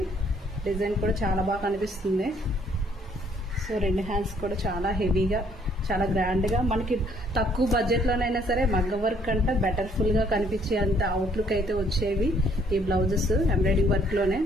డిజైన్ కూడా చాలా బాగా కనిపిస్తుంది. సో రెండు హ్యాండ్స్ కూడా చాలా హెవీగా, చాలా గ్రాండ్ గా, మనకి తక్కువ బడ్జెట్ లోనైనా సరే మగ్గ వర్క్ అంటే బెటర్ఫుల్ గా కనిపించే అంత అవుట్లుక్ అయితే వచ్చేవి. ఈ బ్లౌజెస్ ఎంబ్రాయిడింగ్ వర్క్ లోనే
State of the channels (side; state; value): both; normal; correlation 0.64